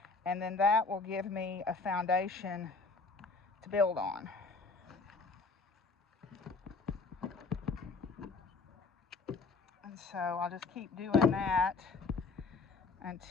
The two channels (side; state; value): right; quieter; 4.3 dB